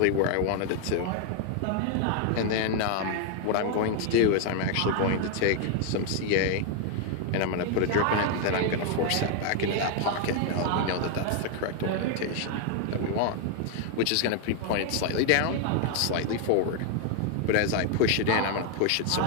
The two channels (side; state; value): both; different; correlation 0.00